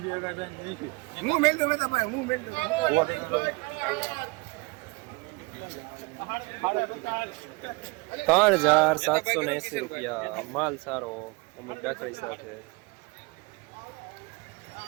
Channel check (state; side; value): quieter; left; 26.4 dB